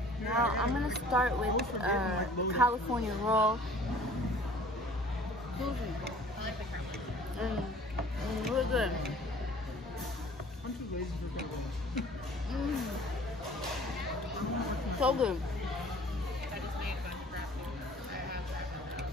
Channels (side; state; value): both; normal; correlation 0.51